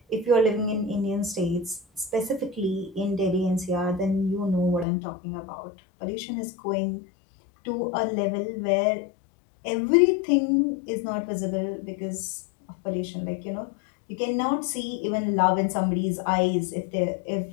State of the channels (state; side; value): drops out; right; at 4.9 s